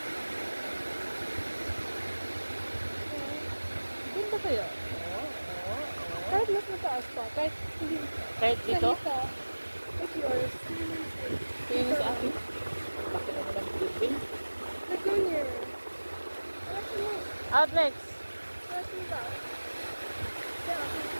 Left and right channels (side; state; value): both; inverted; correlation -1.00